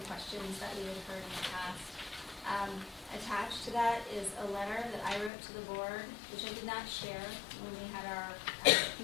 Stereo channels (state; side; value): drops out; right; at 5.3 s